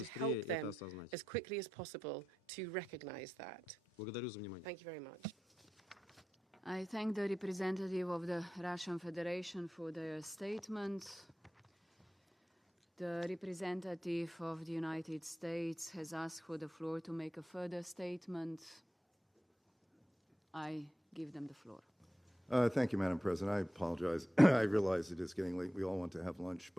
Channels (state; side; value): normal; both; correlation 0.90